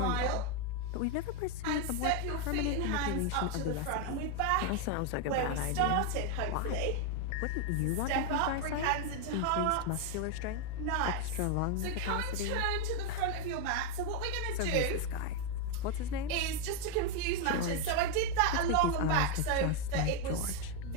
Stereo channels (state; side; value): different; both; correlation 0.01